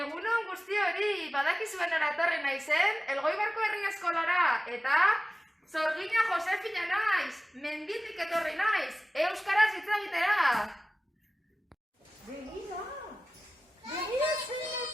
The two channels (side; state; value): both; normal; correlation 0.96